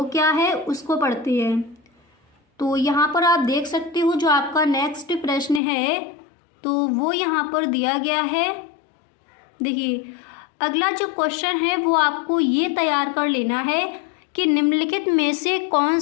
क्या है उसको पढ़ते हैं। तो यहाँ पर आप देख सकते हो जो आपका नेक्स्ट प्रश्न है तो वो यहाँ पर दिया गया है। देखिए अगला जो क्वेश्चन है वो आपको ये तैयार कर लेना है कि निम्नलिखित में से कौन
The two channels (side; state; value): right; drops out; at 5.6 s